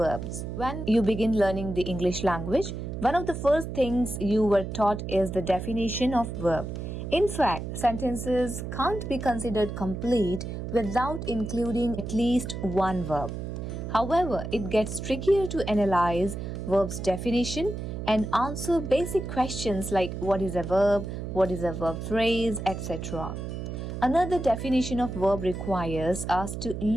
When you begin learning the English language, one of the first things you were taught is the definition of verb. In fact, sentences can't be considered complete without including at least one verb. However, it gets trickier to analyze verb's definition and answer basic questions like what is a verb, what is a verb phrase, etc. Another definition of verb requires us to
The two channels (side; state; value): right; noise; hum, 6 dB below the sound